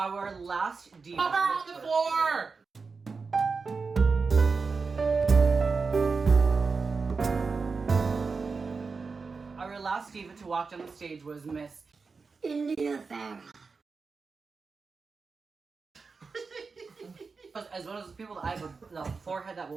last diva. Pop her on the floor! Our last diva to walk down the stage was Miss. India Farah. As one of those people that I have a forehead that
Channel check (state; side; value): quieter; left; 4.7 dB